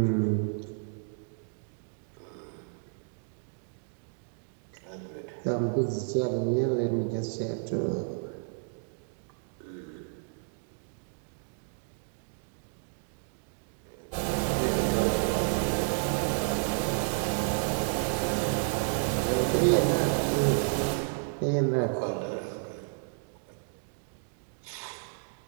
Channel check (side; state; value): left; silent; 57 dB below the other